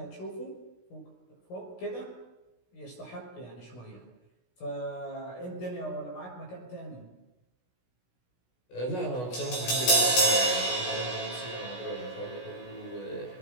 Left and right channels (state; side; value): late; right; 16 ms